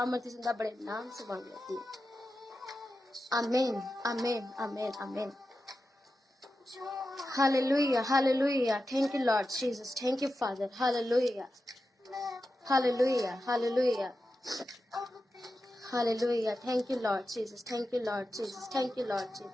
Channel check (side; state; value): both; normal; correlation 0.91